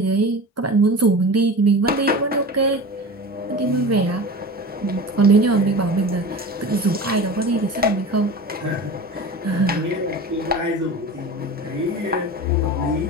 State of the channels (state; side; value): normal; both; correlation 0.32